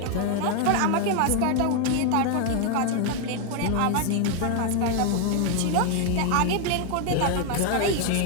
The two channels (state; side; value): different; both; correlation 0.01